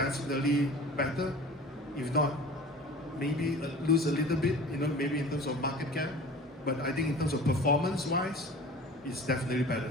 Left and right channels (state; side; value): normal; both; correlation 0.41